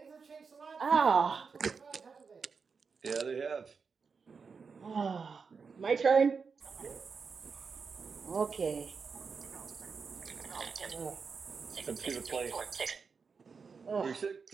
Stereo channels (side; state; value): left; quieter; 5.4 dB